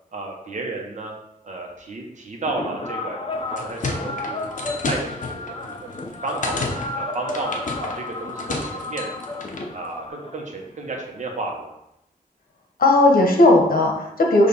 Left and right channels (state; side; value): normal; both; correlation 0.47